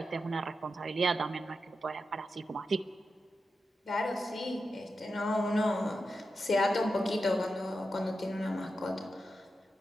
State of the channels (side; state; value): both; normal; correlation 0.89